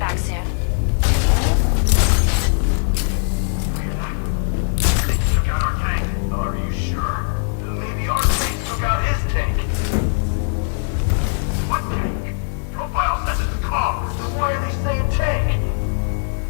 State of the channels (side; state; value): right; silent; 66 dB below the other